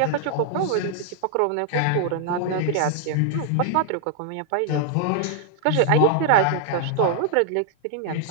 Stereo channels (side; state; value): both; different; correlation 0.00